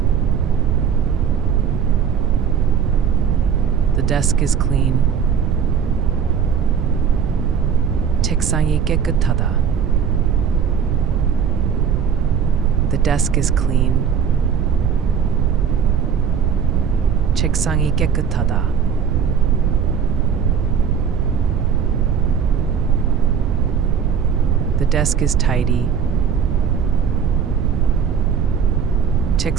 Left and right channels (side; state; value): left; quieter; 7.2 dB